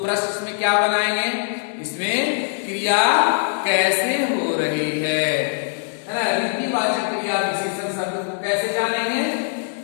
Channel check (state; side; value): silent; right; digital silence